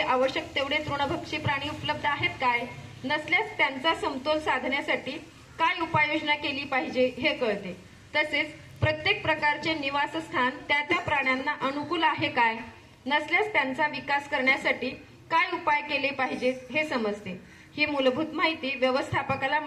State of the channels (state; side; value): identical; both; correlation 1.00